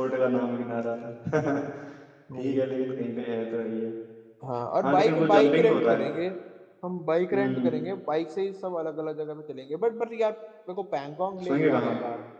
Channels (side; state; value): both; identical; correlation 1.00